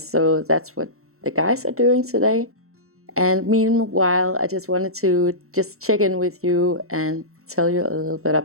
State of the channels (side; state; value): left; late; 0.63 ms